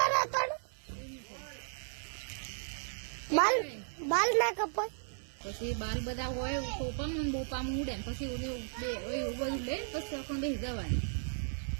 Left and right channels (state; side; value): silent; left; 54 dB below the other